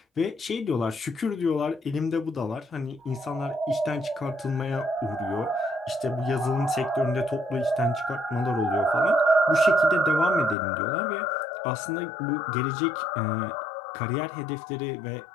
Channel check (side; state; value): right; drops out; at 10.6 s